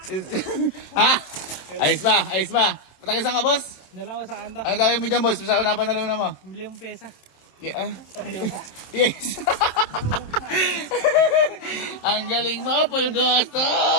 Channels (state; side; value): late; right; 27 ms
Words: Ha? Ayos ba? Patagisan ka, boss? Nalawa sa kanta. Ano gawin mo dyan, boss? Sa una pa naluna mo? Bili yung pesa. Yeah. Yes. Ang galing mo, Pulgoso!